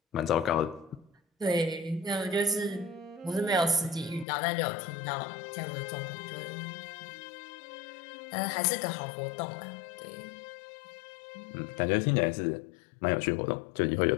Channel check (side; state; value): right; drops out; at 4.2 s